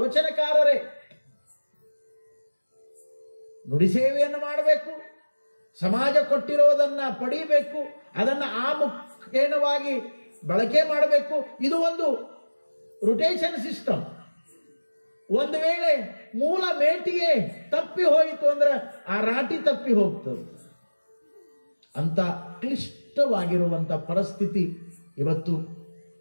ನುಡಿ ಸೇವೆಯನ್ನು ಮಾಡಬೇಕು, ಸಮಾಜ ಕೊಟ್ಟಿರೋದನ್ನ ಪಡೀಬೇಕು, ಅದನ್ನ ಆ ಮುಖೇನವಾಗಿ ಬಳಕೆ ಮಾಡಬೇಕು. ಇದು ಒಂದು ರೊಟೇಷನ್ ಸಿಸ್ಟಮ್. ಒಂದು ವೇಳೆ ಮೂಲ ಮೇಟಿಗೆ ತಪ್ಪಿ ಹೋಯಿತು ಅಂದ್ರೆ ಆ ರಾಟಿ ತಪ್ಪಿ ಹೋಗ್ತದೆ. ಅಂತ ಕ್ಲಿಷ್ಟವಾಗಿರುವಂತ ಪರಿಸ್ಥಿತಿ ಇವತ್ತು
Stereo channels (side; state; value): both; inverted; correlation -1.00